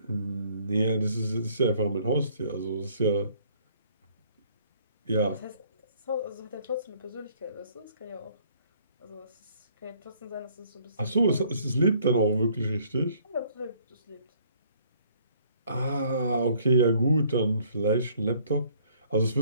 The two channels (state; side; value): inverted; both; correlation -0.61